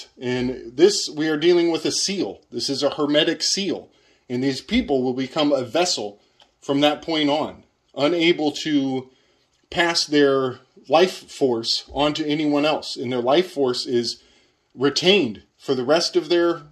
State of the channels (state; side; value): identical; both; correlation 1.00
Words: And this, we are dealing with a seal. This is a hermetic seal. And these people will become a vessel from that point on, unable to pass their life force onto anyone else. And their life force is retained for the rest of